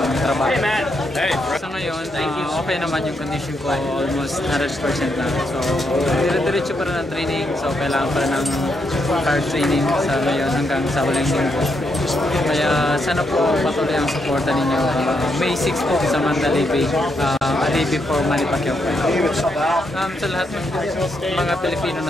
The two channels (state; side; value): normal; both; correlation 0.79